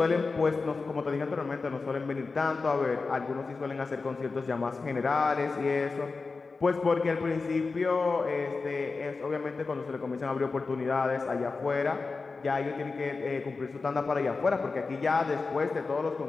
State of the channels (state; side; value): quieter; right; 4.1 dB